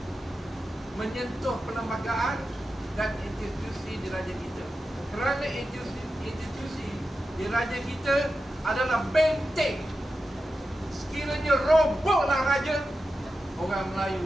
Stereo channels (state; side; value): normal; both; correlation 0.91